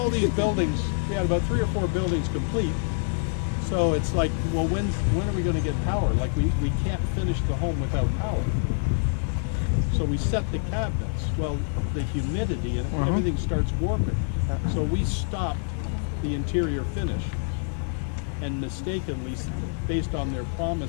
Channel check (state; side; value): silent; right; 61 dB below the other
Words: these buildings, we had about 3 or 4 buildings complete. So it's like, well, when are we going to get power? Like we can't finish the home without power. So we set the cabinets. Well, the humidity and everything starts warping. So we stopped the interior finish. And mistakenly, based on their